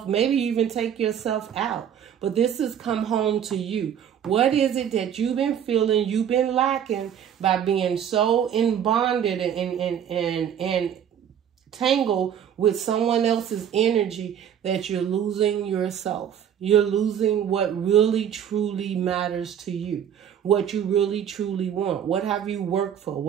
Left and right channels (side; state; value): left; quieter; 9.0 dB